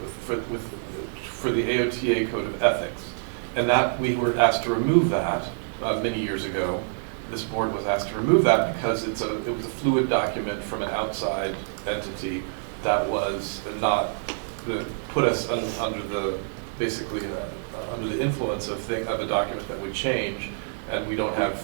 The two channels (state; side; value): silent; left; digital silence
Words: for the AOTA Code of Ethics, and that we were asked to remove that many years ago. This board was asked to remove that because it was a fluid document from an outside entity that was not put us under the basically under the influence of a document that would change, and we don't have